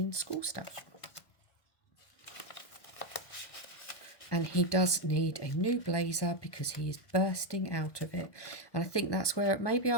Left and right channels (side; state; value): right; late; 1.2 ms